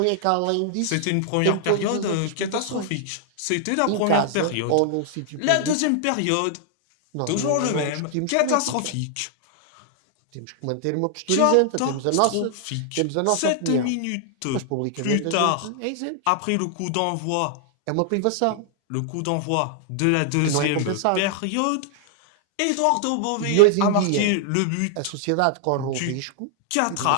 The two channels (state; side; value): different; both; correlation -0.01